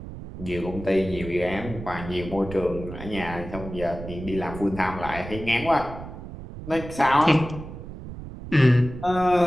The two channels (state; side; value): noise; right; rumble, 11 dB below the sound